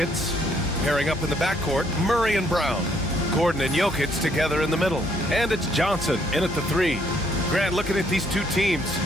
pairing up in the backcourt, Murray and Brown. Gordon and Jokic together in the middle. And it's Johnson in at the 3. Grant, looking at these two teams,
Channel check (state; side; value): normal; both; correlation 0.68